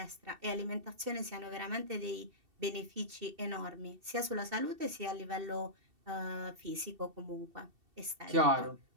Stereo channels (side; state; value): left; late; 2.7 ms